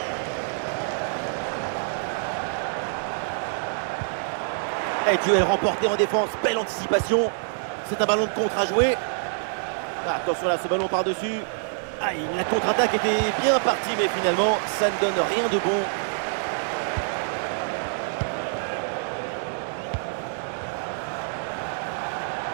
Et duel remporté en défense, belle anticipation. C'est un ballon de contre à jouer. Ah, attention là, ce ballon par-dessus. Ah, la contre-attaque était bien partie, mais finalement, ça ne donne rien de bon.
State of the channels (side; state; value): left; silent; digital silence